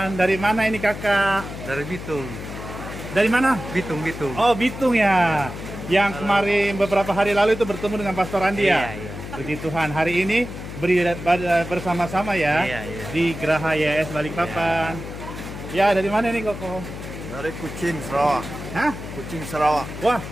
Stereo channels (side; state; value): left; noise; hum, 10 dB below the sound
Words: Dari mana ini kakak? Dari Bitung. Dari mana? Bitung. Oh, Bitung ya. Yang kemarin beberapa hari lalu itu bertemu dengan Pastor Andi ya? Iya. Puji Tuhan. Hari ini bersama-sama ya Iya. di Geraha YS Balikpapan. Ya, dari mana nih Koko? Dari Kucing, Sarawak. Hah? Kucing, Sarawak. Wah,